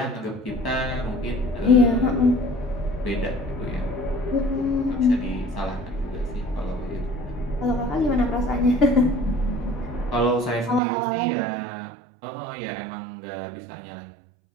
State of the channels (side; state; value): left; drops out; at 10.8 s